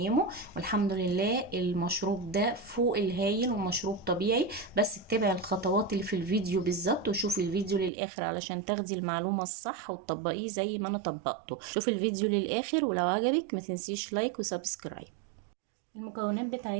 والحمد لله المشروب ده فوق الهايل ومشروب طبيعي. بس اتبعي الخطوات اللي في الفيديو بالظبط، وشوفي الفيديو للاخر علشان تاخدي المعلومه الصح وتطبقيه زي ما انا طبقته. شوفي الفيديو للاخر، ولو عجبك ما تنسيش لايك وسبسكرايب. المكونات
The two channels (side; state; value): left; drops out; at 7.9 s